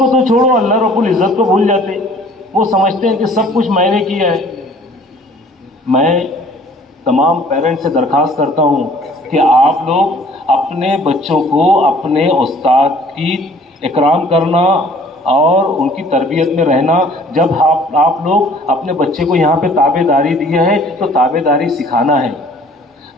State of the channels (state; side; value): normal; both; correlation 0.53